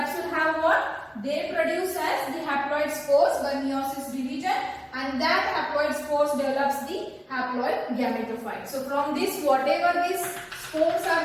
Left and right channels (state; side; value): identical; both; correlation 1.00